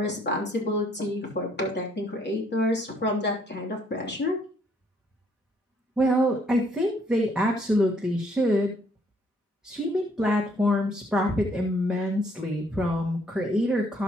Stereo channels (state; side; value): normal; both; correlation 0.66